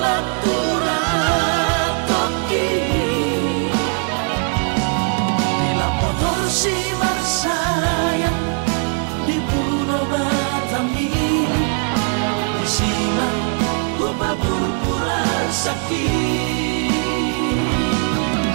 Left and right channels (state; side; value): quieter; left; 36.3 dB